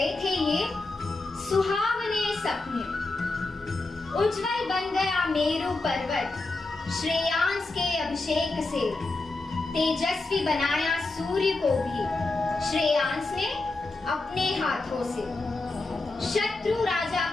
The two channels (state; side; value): quieter; right; 3.2 dB